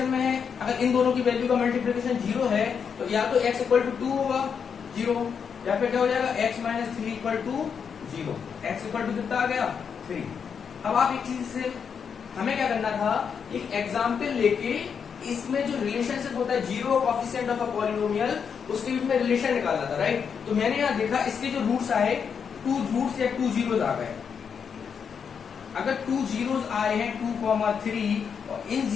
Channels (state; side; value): quieter; right; 6.8 dB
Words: में है, अगर इन दोनों की वैल्यू का मल्टीप्लिकेशन 0 है तो या तो x इक्वल टू 2 होगा 0, या फिर क्या हो जाएगा? x minus 3 equal to 0। x equal to कितना आ गया? 3। अब आप एक चीज से हमें क्या करना था, एक एग्जाम्पल लेके इसमें जो रिलेशनशिप होता है zero coefficient of a polynomial, उसके बीच में रिलेशन निकालना था, राइट? तो मैंने यहाँ देखा इसके जो रूट्स आए 2 रूट्स या 2 जीरोस आ गए। अगर 2 जीरोस आए हैं 2,3, और इन